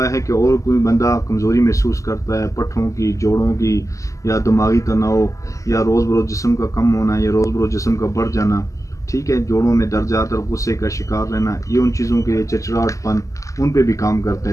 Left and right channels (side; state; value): right; late; 0.16 ms